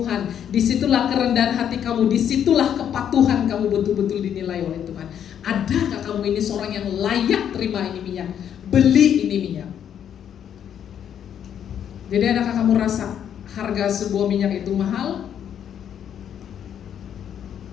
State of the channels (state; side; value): quieter; right; 9.2 dB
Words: disitulah kerendahan hati kamu, disitulah kepatuhan kamu betul-betul dinilai oleh Tuhan. Adakah kamu ini seorang yang layak terima ini minyak, beli ini minyak? Jadi adakah kamu rasa harga sebuah minyak itu mahal?